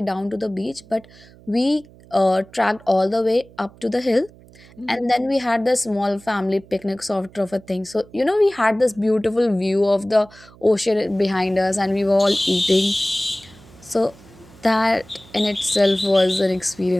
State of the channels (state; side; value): noise; right; hum, 24 dB below the sound